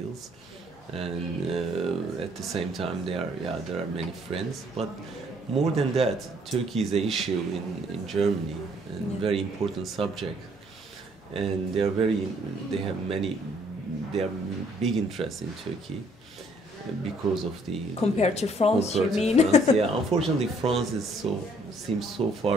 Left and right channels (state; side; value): normal; both; correlation 0.63